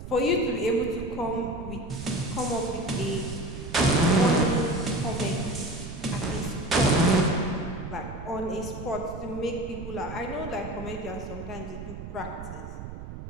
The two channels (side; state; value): right; noise; rumble, 10 dB below the sound